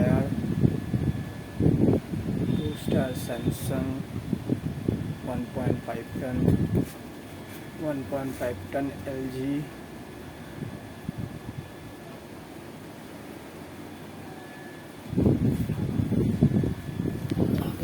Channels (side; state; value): both; identical; correlation 1.00